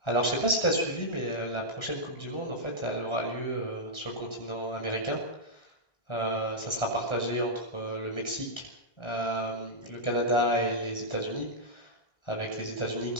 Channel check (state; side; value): late; right; 1.4 ms